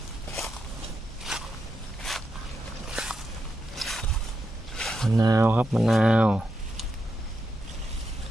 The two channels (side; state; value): both; normal; correlation 0.85